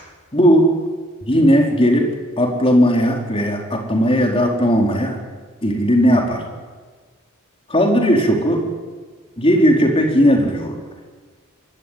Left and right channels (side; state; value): both; normal; correlation 0.68